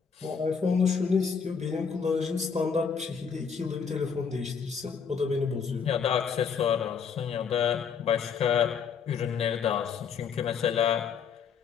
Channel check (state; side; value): quieter; right; 6.4 dB